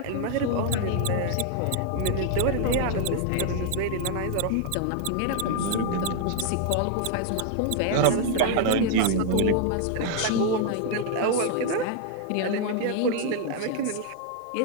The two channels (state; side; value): different; both; correlation 0.00